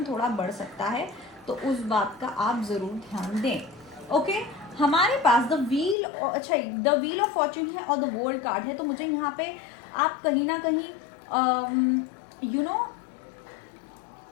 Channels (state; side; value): drops out; right; at 6.0 s